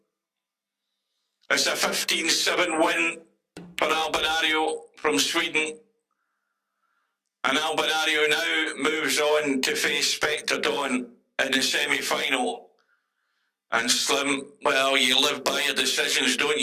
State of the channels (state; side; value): identical; both; correlation 1.00